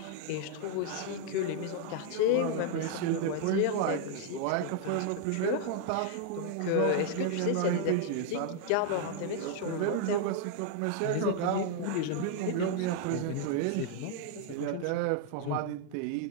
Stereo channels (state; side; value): different; both; correlation 0.00